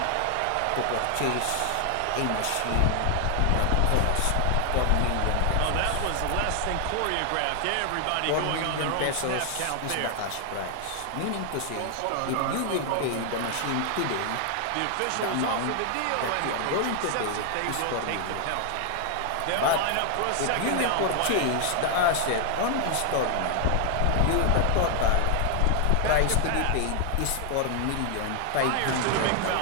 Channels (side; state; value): both; different; correlation 0.00